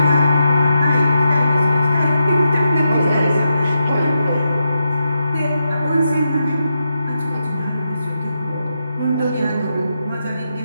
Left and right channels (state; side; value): inverted; both; correlation -0.84